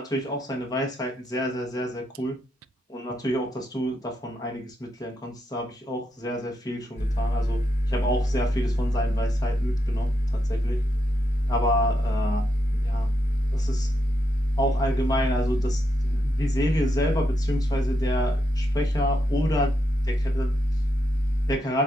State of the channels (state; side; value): normal; both; correlation 0.82